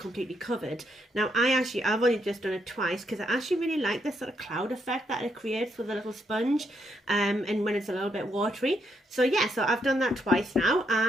covered. Now I've only just done it twice because I actually really like this sort of cloud effect that it creates with a little sponge, and when it's a little bit watery. So yeah, so I've done that twice now,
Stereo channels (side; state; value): both; normal; correlation 0.77